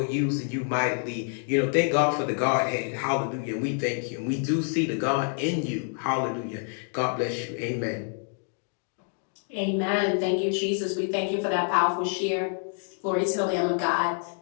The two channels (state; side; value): silent; right; 56 dB below the other